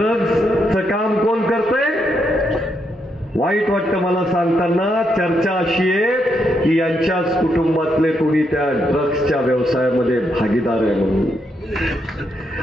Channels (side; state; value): both; normal; correlation 0.79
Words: काम कोण करतंय? वाईट वाटतं मला सांगताना. चर्चा अशी आहे की यांच्याच कुटुंबातले कोणी त्या ड्रग्सच्या व्यवसायामध्ये भागीदार आहे म्हणून.